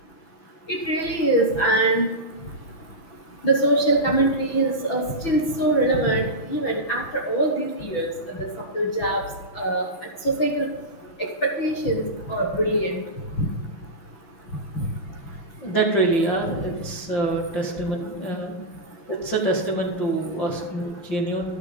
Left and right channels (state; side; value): late; right; 6.1 ms